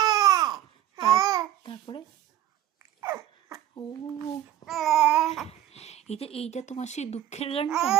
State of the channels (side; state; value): left; quieter; 12.0 dB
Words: তারপরে ও এইটা তোমার সেই দুঃখের গানটা।